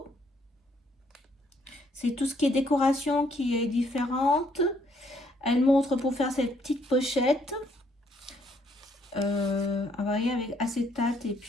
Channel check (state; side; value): normal; both; correlation 0.69